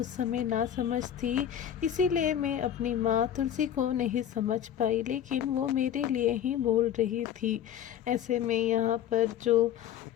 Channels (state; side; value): quieter; right; 10.1 dB